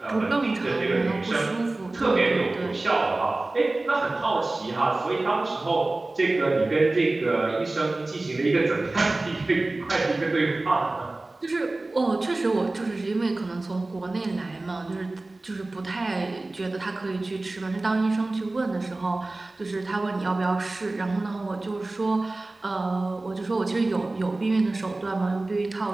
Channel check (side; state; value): left; quieter; 3.0 dB